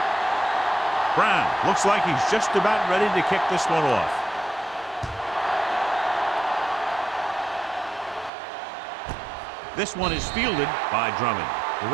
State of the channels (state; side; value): drops out; left; at 8.3 s